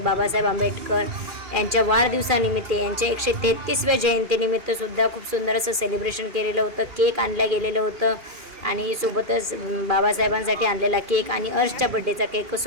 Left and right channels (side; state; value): left; late; 2.4 ms